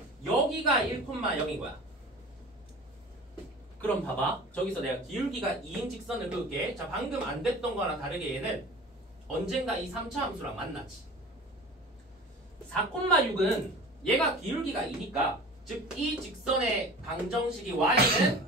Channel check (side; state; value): both; normal; correlation 0.38